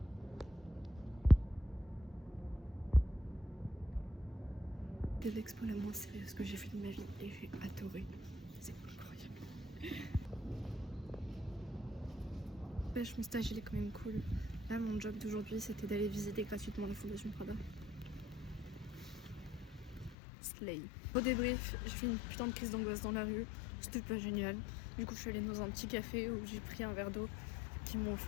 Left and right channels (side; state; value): right; drops out; at 20.2 s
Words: C'est l'expo la moins sérieuse que j'ai fait de ma vie et j'ai adoré. C'est incroyable. Mon stage il est quand même cool. Là mon job d'aujourd'hui c'était d'aller visiter gratuitement la Fondation Prada. Ce Slay. Au débrief, j'ai fait une putain de crise d'angoisse dans la rue. C'était pas génial. Du coup, je suis allée dans un petit café où j'ai pris un verre d'eau qu'ils m'ont